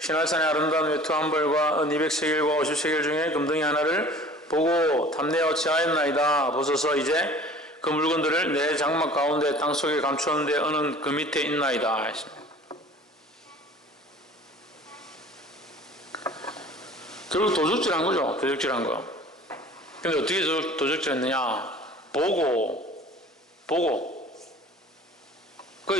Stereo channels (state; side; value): normal; both; correlation 0.46